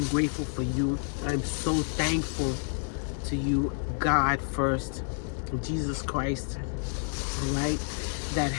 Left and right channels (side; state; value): right; silent; 58 dB below the other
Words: grateful for you. I'm so thankful to you, God first, Jesus Christ, right, that